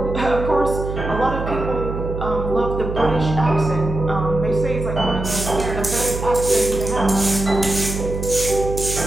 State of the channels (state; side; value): noise; right; hum, 5 dB below the sound